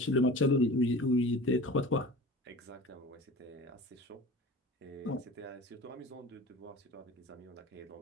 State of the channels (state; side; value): normal; both; correlation 0.38